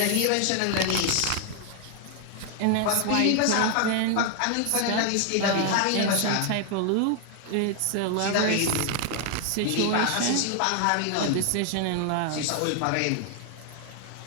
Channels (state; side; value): different; both; correlation 0.00